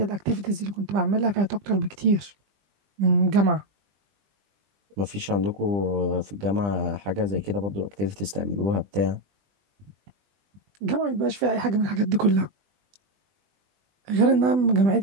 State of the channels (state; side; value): late; left; 20 ms